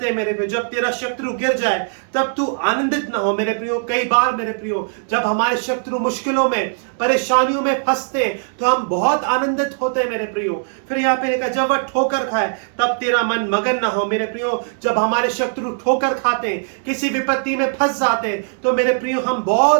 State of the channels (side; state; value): left; silent; digital silence